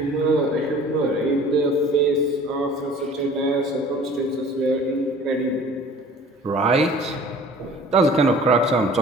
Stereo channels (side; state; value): both; normal; correlation 0.47